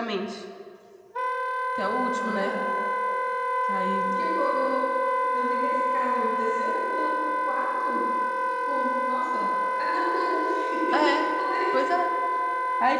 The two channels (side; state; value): both; identical; correlation 1.00